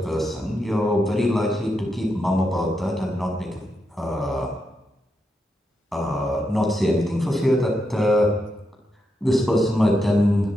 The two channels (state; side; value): normal; both; correlation 0.84